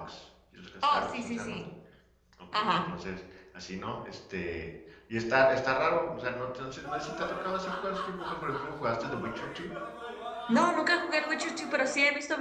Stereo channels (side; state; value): both; identical; correlation 1.00